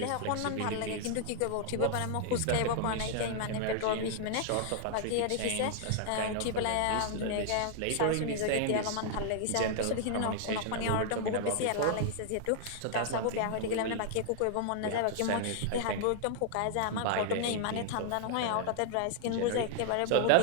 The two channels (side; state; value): both; different; correlation -0.01